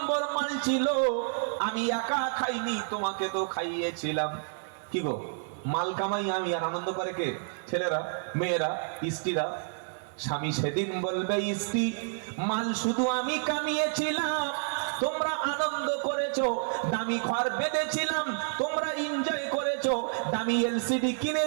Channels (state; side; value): silent; left; 58 dB below the other